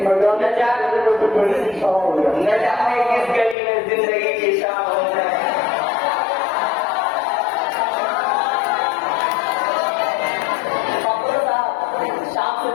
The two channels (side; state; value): right; drops out; at 3.6 s